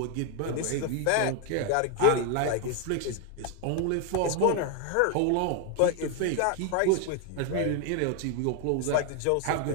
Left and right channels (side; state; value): both; different; correlation 0.01